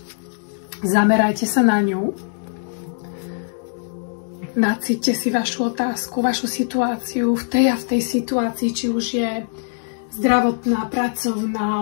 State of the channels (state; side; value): silent; right; 65 dB below the other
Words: Zamerajte sa na ňu. Nacíťte si vašu otázku, vašu situáciu v tej a v tej situácii, či už je zdravotná,